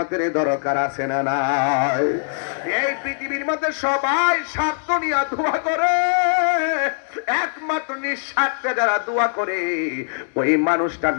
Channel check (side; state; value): right; silent; digital silence